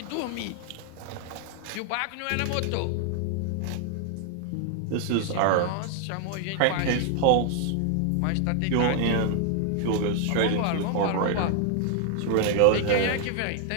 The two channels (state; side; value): different; both; correlation 0.00